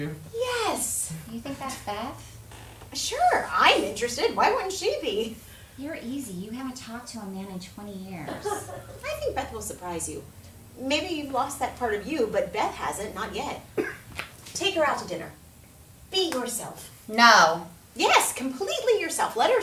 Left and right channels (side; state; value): both; identical; correlation 1.00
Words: Yes. You think that's Beth? Sure, I'm interested. Why wouldn't she be? You're easy. You haven't talked to a man in 20 years. I think Beth will surprise you. Maybe you've lost that part of you, but Beth hasn't, not yet. Take her out to dinner. Be yourself. No. Yes, completely yourself. Let her